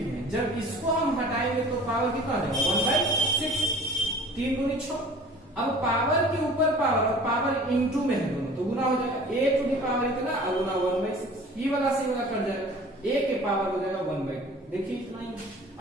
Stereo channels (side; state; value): both; normal; correlation 0.46